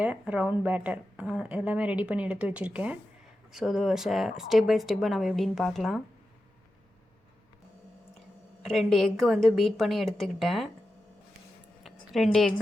ரவுண்ட் பேட்டர் எல்லாமே ரெடி பண்ணி எடுத்து வச்சுருக்கேன். ஸோ அது ஸ்டெப் பை ஸ்டெப்பாக நம்ம எப்படின்னு பார்க்கலாம். 2 எக்கு வந்து பீட் பண்ணி எடுத்துக்கிட்டேன். 2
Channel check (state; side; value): normal; both; correlation 0.91